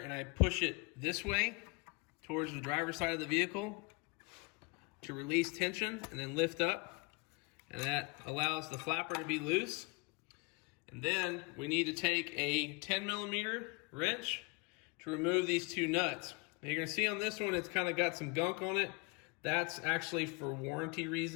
I push it this way towards the driver's side of the vehicle to release tension and then lift up. And that allows the flapper to be loose. And then we need to take a 10mm wrench to remove these two nuts. Now you're going to see on this one it's kind of got some gunk on it. That's actually for warranty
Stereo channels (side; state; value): right; quieter; 29.5 dB